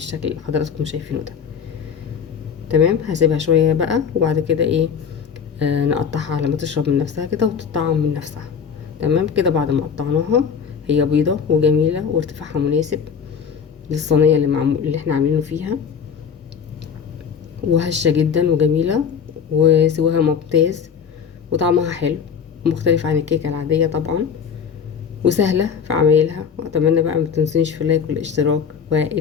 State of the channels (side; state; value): right; quieter; 6.9 dB